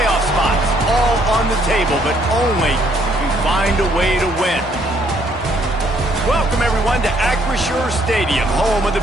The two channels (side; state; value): both; normal; correlation 0.67